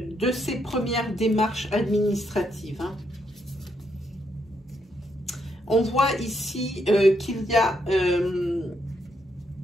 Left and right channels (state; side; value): normal; both; correlation 0.77